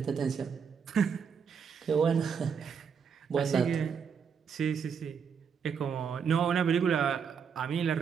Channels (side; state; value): left; quieter; 6.6 dB